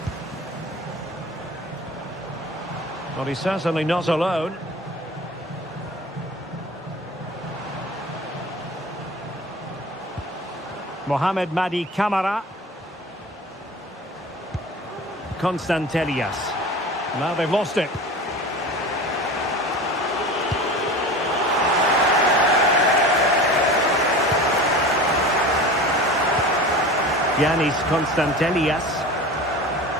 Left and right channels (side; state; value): both; normal; correlation 0.36